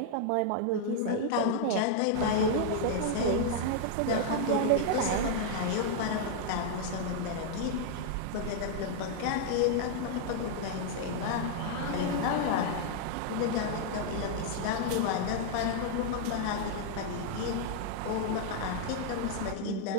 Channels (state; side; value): different; both; correlation -0.01